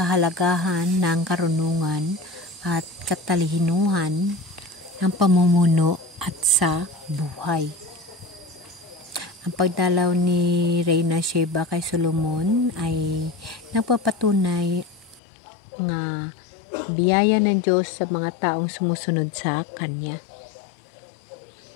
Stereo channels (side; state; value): right; drops out; at 15.2 s